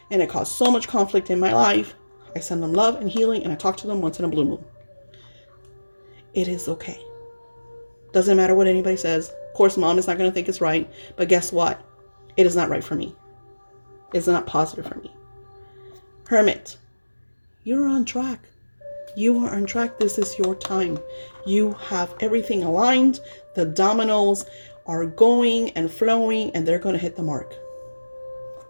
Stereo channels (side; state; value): both; inverted; correlation -1.00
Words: and it caused so much conflict in my life. I send them love and healing and I talk to them once in a blue moon. It is okay. Doesn't matter what anybody says. Of course, mom is not going to think it's right, but guess what? It is not right for me. It's not positive for me. Hermit, you're on track. You are on track. This is your time. You have everything aligned. The dominoes are going and flowing and they're going to hit the mark.